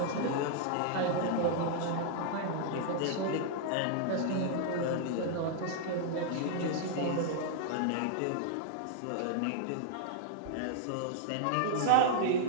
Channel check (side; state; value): both; different; correlation -0.01